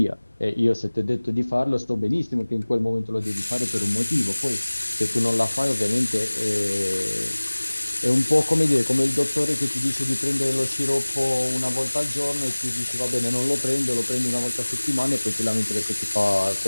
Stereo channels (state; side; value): inverted; both; correlation -1.00